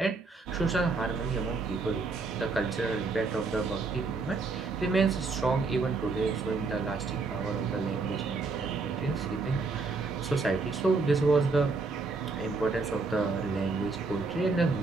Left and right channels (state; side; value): quieter; left; 4.0 dB